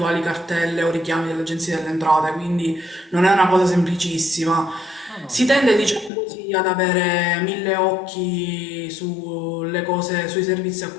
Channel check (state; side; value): drops out; right; at 6.1 s